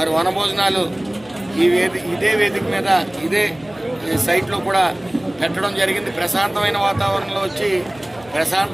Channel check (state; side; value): noise; left; hum, 24 dB below the sound